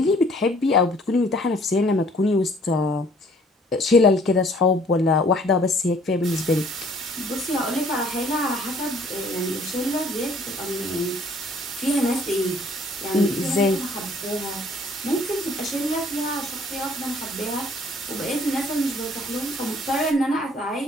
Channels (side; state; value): both; normal; correlation 0.58